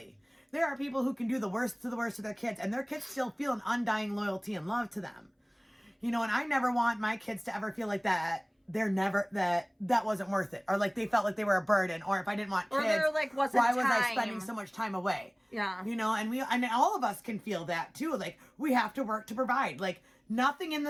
There are people who can do the worst to their kids, and their kids still feel an undying loyalty and love to them. You know, and I never want my kids to ever feel like that. That wasn't worth it, or like they felt like they were a burden, or if I didn't want kids, or there, like, wasn't why was I time. spending so much time away? Yeah. You know, and all of us can feel that too. Like, we have to work to provide. Like, nothing in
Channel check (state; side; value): identical; both; correlation 1.00